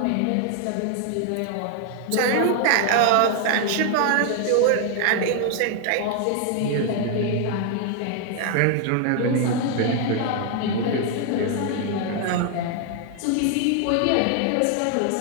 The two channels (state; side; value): different; both; correlation 0.00